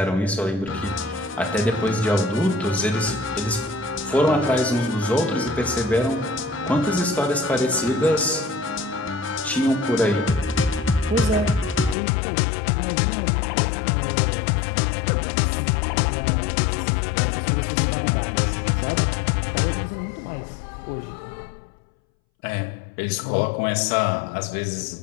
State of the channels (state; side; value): drops out; right; at 12.0 s